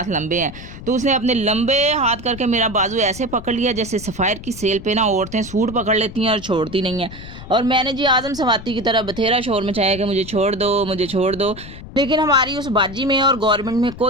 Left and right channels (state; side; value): noise; left; rumble, 14 dB below the sound